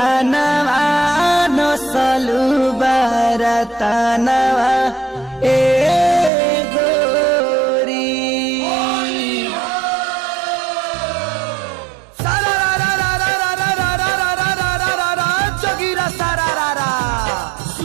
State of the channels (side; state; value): left; drops out; at 6.3 s